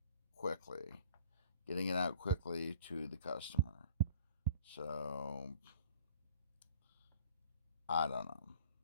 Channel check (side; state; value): both; inverted; correlation -0.51